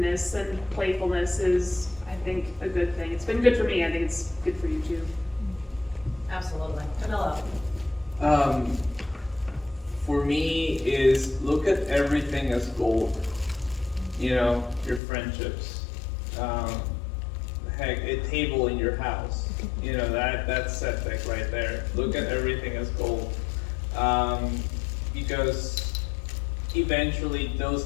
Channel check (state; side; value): drops out; right; at 15.0 s